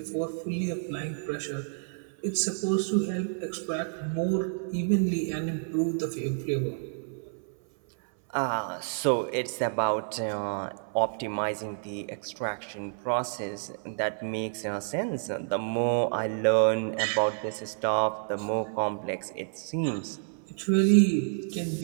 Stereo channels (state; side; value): silent; left; 58 dB below the other